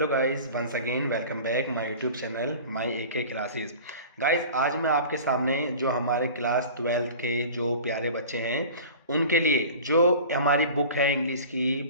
guys, once again welcome back my YouTube channel my AK classes. Guys, आज मैं आपके सामने जो हमारे क्लास 12th के जो प्यारे बच्चे हैं उनके लिए जो हमारी बुक है इंग्लिश की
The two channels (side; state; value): both; inverted; correlation -0.39